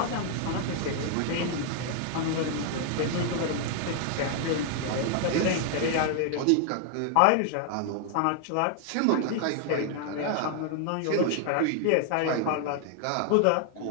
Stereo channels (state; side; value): different; both; correlation 0.00